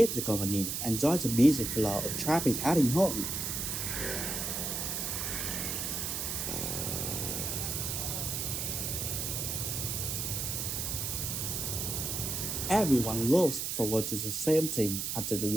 the company and join the busy flow of traffic heading home. Everyone looks forward to the same thing after the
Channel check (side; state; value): right; noise; hiss, 2 dB below the sound